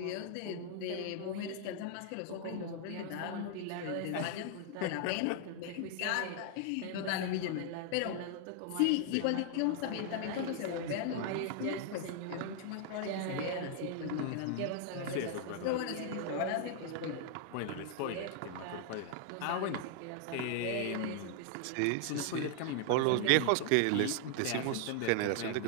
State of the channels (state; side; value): different; both; correlation 0.00